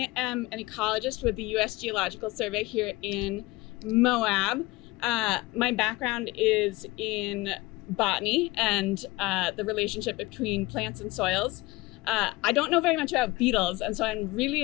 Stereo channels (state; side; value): quieter; right; 21.1 dB